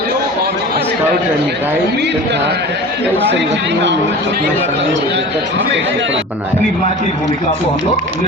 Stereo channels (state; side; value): normal; both; correlation 0.36